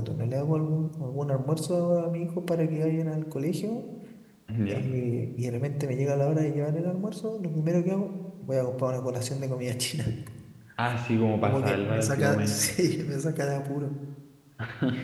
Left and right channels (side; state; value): both; identical; correlation 1.00